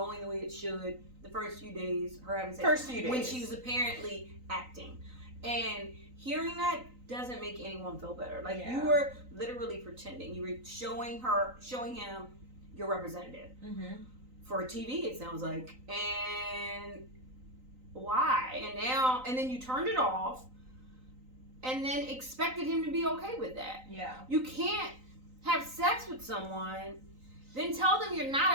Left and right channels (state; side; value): late; left; 3.9 ms